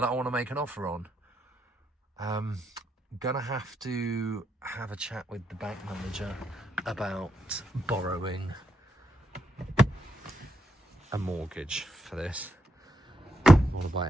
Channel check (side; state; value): both; normal; correlation 0.80